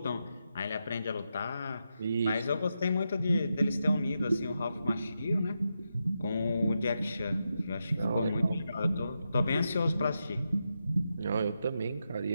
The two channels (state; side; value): inverted; both; correlation -0.86